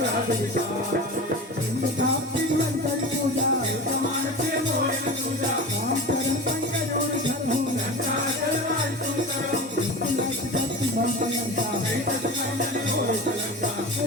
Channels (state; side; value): normal; both; correlation 0.31